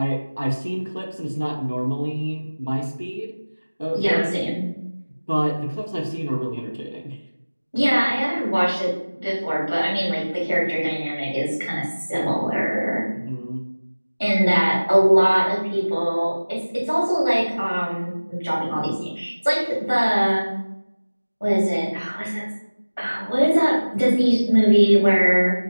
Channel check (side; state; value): both; inverted; correlation -1.00